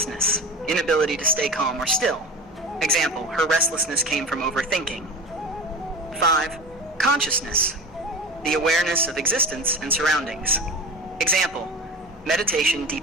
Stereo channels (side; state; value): both; normal; correlation 0.32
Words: inability to stay calm or still. Example, her restlessness came from overthinking. 5. Consciousness, the awareness of existence and surroundings. Example, meditation